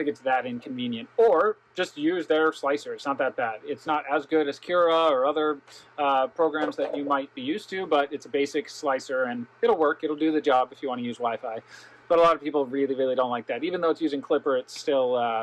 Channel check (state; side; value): identical; both; correlation 1.00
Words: it's that inconvenient. Or just use their slicer. It's not that bad. It's not as good as Cura or other programs that you might be used to, but it's a basic slicer and it'll work. It'll do the job if you want to use Wi-Fi. But a lot of people really, really don't like that. Even though it's using Clipper, it's